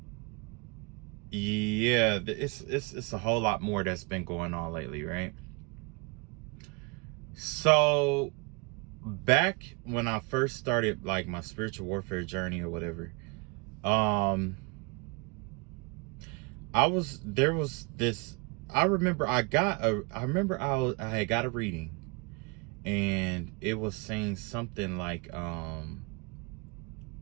yeah, it's a whole lot more that's been going on lately, right? So back when I first started like my spiritual warfare journey or whatever, there was this. I remember I had got a reading, and it was saying something like,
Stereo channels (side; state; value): left; quieter; 31.1 dB